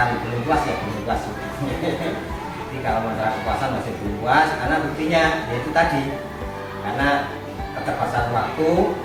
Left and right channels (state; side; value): identical; both; correlation 1.00